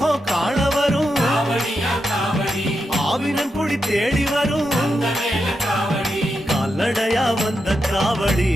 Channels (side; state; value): both; normal; correlation 0.86